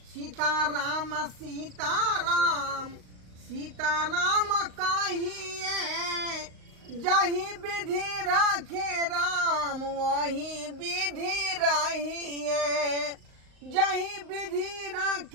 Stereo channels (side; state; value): left; late; 38 ms